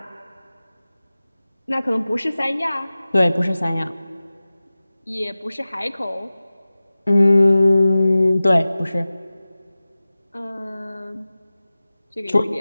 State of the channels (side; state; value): both; inverted; correlation -0.97